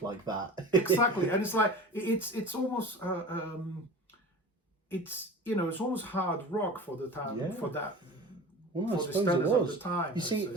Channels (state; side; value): normal; both; correlation 0.35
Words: like that. Exactly, and it's like it's almost it's almost hard rock for the time for that. Well, I suppose it was. Of the time, you see,